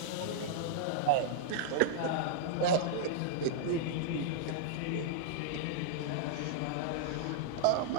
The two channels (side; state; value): both; different; correlation -0.01